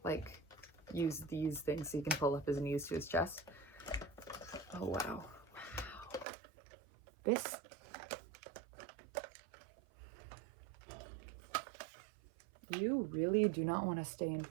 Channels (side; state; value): left; drops out; at 6.2 s